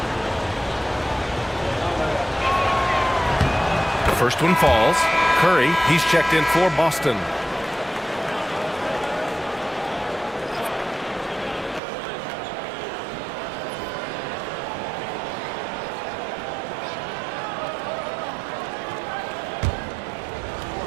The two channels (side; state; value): left; drops out; at 11.8 s